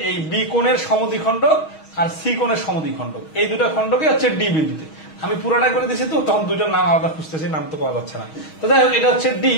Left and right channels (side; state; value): right; late; 6.3 ms